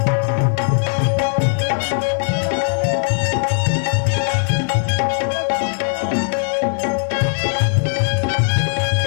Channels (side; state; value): right; silent; 67 dB below the other